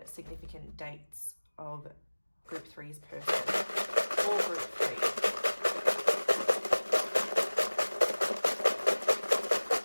significant dates of group 3's person, or group 3.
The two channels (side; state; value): both; inverted; correlation -1.00